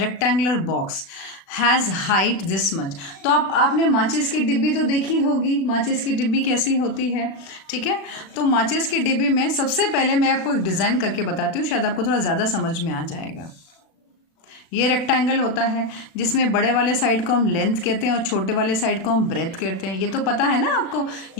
box has height this much. तो आपने माचिस की डिब्बी तो देखी होगी, माचिस की डिब्बी कैसी होती है, ठीक है। तो माचिस की डिब्बी में सबसे पहले मैं आपको एक डिज़ाइन करके बताती हूँ, शायद आपको थोड़ा ज़्यादा समझ में आ जाएगा। ये रेक्टेंगल होता है जिसमें बड़े वाले साइड को हम लेंथ कहते हैं और छोटे वाले साइड को हम ब्रेथ कहते हैं। ये तो पता है ना आपको।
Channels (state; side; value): late; right; 36 ms